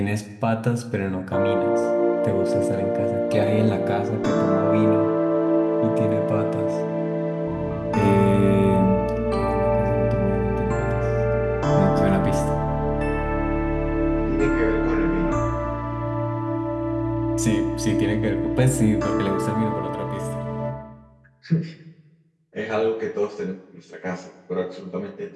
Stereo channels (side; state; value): both; identical; correlation 1.00